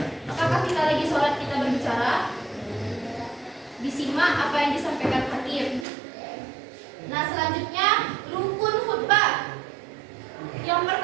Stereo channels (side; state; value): left; drops out; at 5.9 s